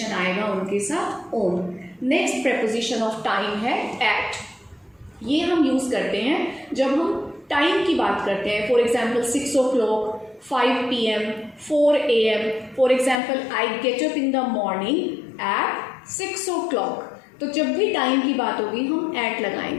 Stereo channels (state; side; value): drops out; right; at 13.2 s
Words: आएगा उनके साथ on. Next preposition of time है एट. ये हम यूज़ करते हैं जब हम टाइम की बात करते हैं. For example 6 o'clock, 5 PM, 4 AM. For example, I get up in the morning at 6 o'clock. तो जब भी टाइम की बात होगी हम एट